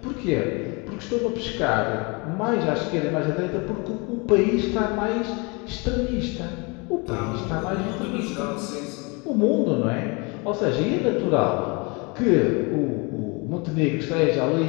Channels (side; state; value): right; quieter; 29.5 dB